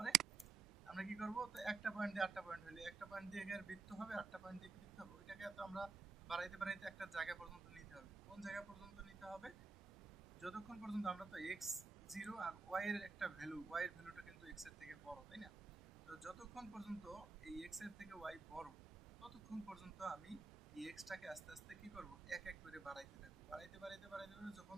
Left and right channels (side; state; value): left; quieter; 4.4 dB